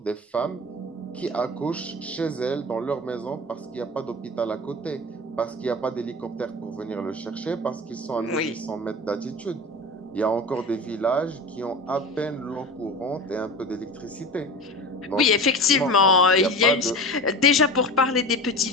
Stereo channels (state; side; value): normal; both; correlation 0.31